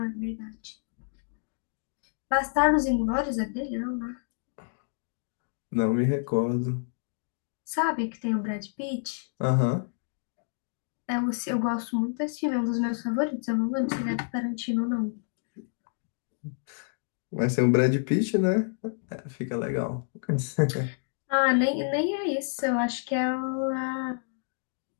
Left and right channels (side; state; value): right; silent; digital silence